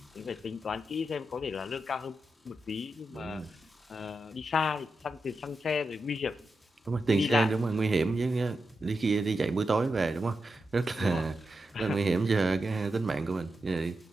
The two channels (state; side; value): normal; both; correlation 0.88